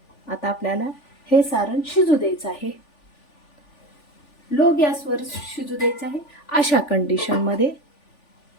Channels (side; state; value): right; late; 3.4 ms